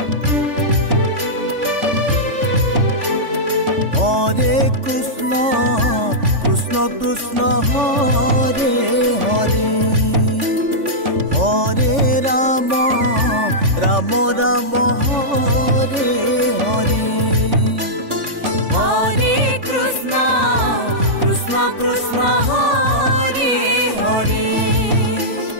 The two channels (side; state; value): left; late; 3.5 ms